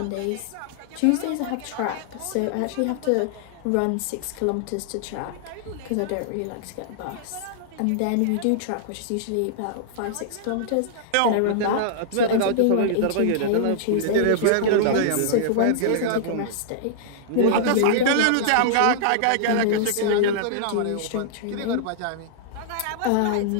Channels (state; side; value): different; both; correlation -0.01